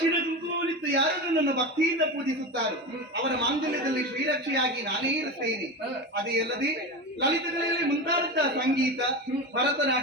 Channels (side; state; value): both; normal; correlation 0.24